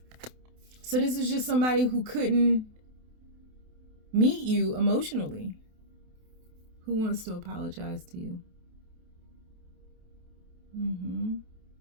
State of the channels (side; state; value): left; late; 28 ms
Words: So this is just somebody who couldn't meet you emotionally, who wants to apologize to you.